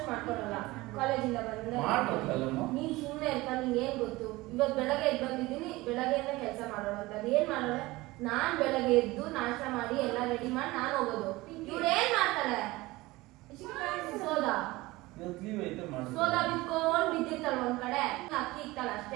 ಮಾಡ್ಕೊಡಲ್ಲ ಕಾಲೇಜಿಂದ ಮಾಡ್ಕೊಡಲ್ಲಮ್ಮ ನೀನ್ ಸುಮ್ಮನೆ ಇರ್ಪ ನಿಂಗೆ ಏನ್ ಗೊತ್ತು ಇವತ್ತು ಬೆಳಗ್ಗೆ ಎದ್ದು ಬಂದಿದ್ದೀನಿ ಬೆಳಗ್ಗೆಯಿಂದ ಕೆಲಸ ಮಾಡೋಣ ಅಂತ ಅದು ಏನ್ ಮಾಡೋಣ ನಾನ್ ಬೆಳಗ್ಗೆ ಎದ್ದು ನಾಷ್ಟ ಮಾಡಿ ಎಲ್ಲ ರೆಡಿ ಮಾಡಿ ನಾನು ಹೋಗೋದು ಇವ್ರು ಏನ್ ಮಾಡ್ತಾರೆ ಸೋದಾ ಇವತ್ತು ಲೀವ್ ಐತೆ ಮಾಡಿ ಸೋದಾ ಬಿತ್ಕೊಂಡ್ ಬಿದ್ದಿರ್ತಾಳ ಒಂದ್ ಕಡೆ ಅಕ್ಕಿ ಇಕ್ತಾಳ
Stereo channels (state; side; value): quieter; left; 20.3 dB